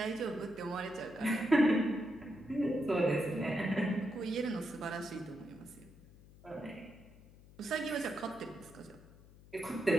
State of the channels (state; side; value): noise; left; hum, 22 dB below the sound